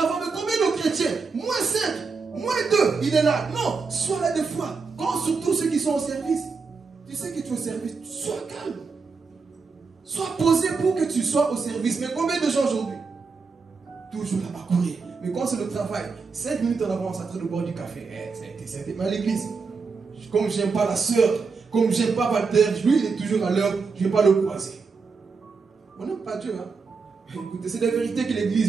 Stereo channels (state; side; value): quieter; left; 4.8 dB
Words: Mais combien de chrétiens? Moins 5, moins 2, il est là. Non, sois là des fois. Quand surtout ceux qui sont au service, tu sais que tu es au service, sois calme. Sois posé pour que tu sois au service. Mais combien de gens aujourd'hui? Toujours là-bas courir. Mais quand c'est le travail, 5 minutes en avance, à train de boire du café. Mais à l'église, comme j'aime pas la sœur, comme j'aime pas Walter, lui il est toujours à l'heure, je ne vais pas le croiser. On n'aime pas Dieu. Hein? Écoutez, c'est la vérité que l'église